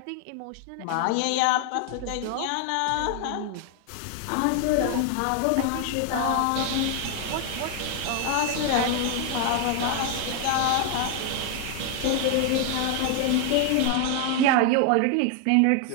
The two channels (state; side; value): different; both; correlation 0.00